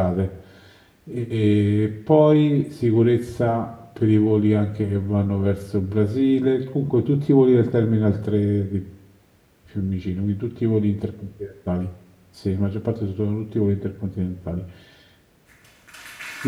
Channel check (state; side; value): identical; both; correlation 1.00